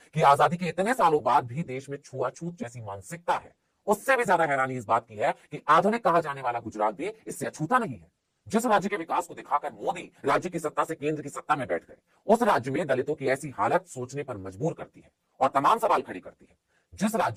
कि आजादी के इतने सालों बाद भी देश में छुआछूत जैसी मानसिकता है। उससे भी ज्यादा हैरानी इस बात की है कि आधुनिक कहा जाने वाला गुजरात भी इससे अछूता नहीं है। जिस राज्य के विकास को दिखाकर मोदी राज्य की सत्ता से केंद्र की सत्ता में बैठ गए, उस राज्य में दलितों की ऐसी हालत सोचने पर मजबूर करती है और तमाम सवाल खड़ी करती है। जिस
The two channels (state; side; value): identical; both; correlation 1.00